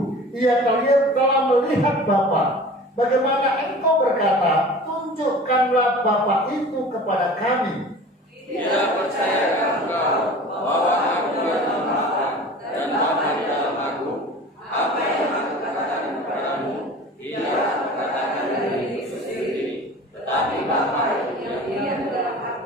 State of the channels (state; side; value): normal; both; correlation 0.40